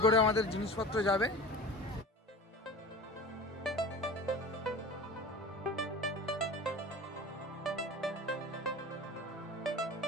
করে আমাদের জিনিসপত্র যাবে।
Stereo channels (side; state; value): both; normal; correlation 0.36